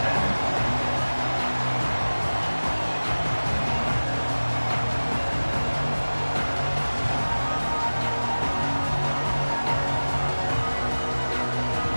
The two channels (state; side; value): inverted; both; correlation -1.00